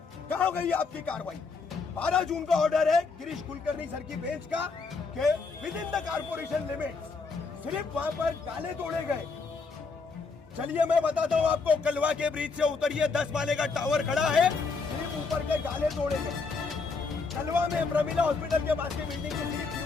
कहाँ गई आपकी कार्रवाई? 12 जून का ऑर्डर है गिरीश कुलकर्णी सर की बेंच का कि with in the corporation limits सिर्फ वहां पर डाले तोड़े गए। चलिए मैं बताता हूँ आपको, कलवा के ब्रिज से उतरिए, 10 माले का टावर खड़ा है, सिर्फ ऊपर के डाले तोड़े गए। कलवा में प्रमिला हॉस्पिटल के पास की बिल्डिंग की सिर्फ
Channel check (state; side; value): quieter; right; 4.5 dB